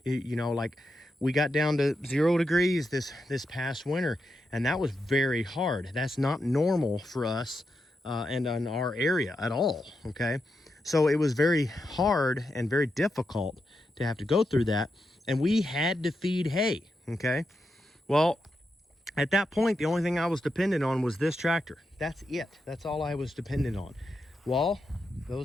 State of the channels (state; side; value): normal; both; correlation 0.86